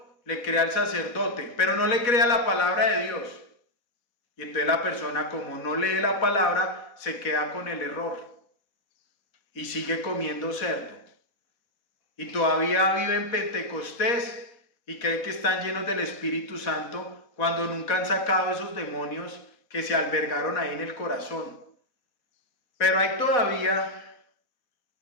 le cree al sacerdote, pero no le cree a la palabra de Dios. Y entonces la persona, como no lee la palabra, se queda con el error y sigue comiendo cerdo. y todavía viven Pentecostés y creen que están llenos del Espíritu Santo cuando nunca han sacado esos demonios que se albergaron ahí en el corazón. Pero hay todavía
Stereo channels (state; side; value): late; right; 4.1 ms